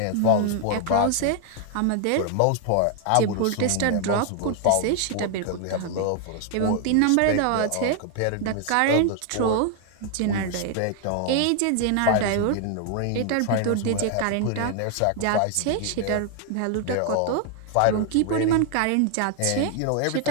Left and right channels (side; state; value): both; different; correlation 0.00